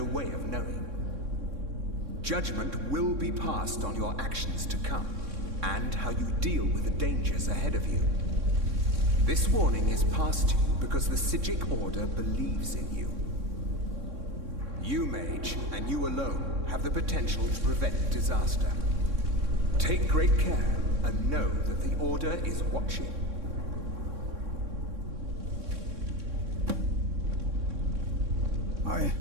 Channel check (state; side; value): late; left; 3.6 ms